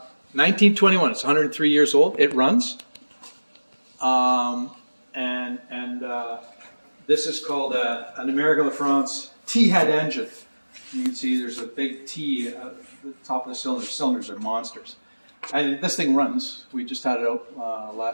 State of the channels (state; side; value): inverted; both; correlation -1.00